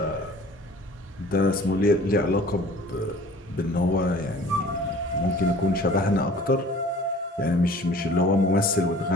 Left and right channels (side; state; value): both; normal; correlation 0.48